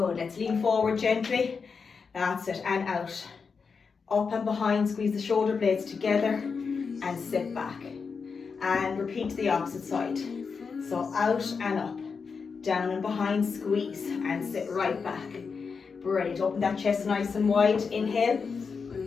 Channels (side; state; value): right; quieter; 5.3 dB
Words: let's lean forward gently. That's it, and out. Up and behind, squeeze the shoulder blades together and sit back. And repeat the opposite side. So out and up. Down and behind, squeeze and sit right back. Brilliant. Open that chest nice and wide. Inhale.